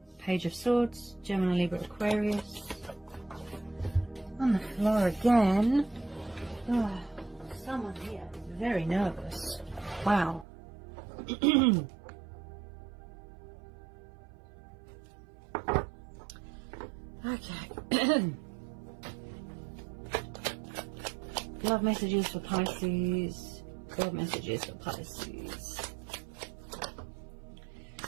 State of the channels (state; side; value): drops out; left; at 10.5 s